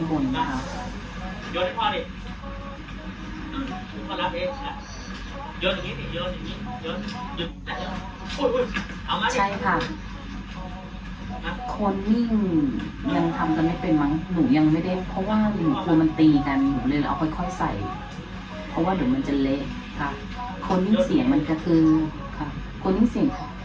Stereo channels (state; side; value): identical; both; correlation 1.00